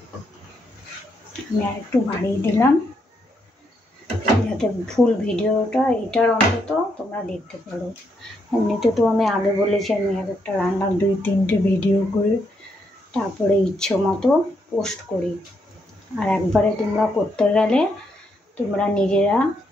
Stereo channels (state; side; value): normal; both; correlation 0.77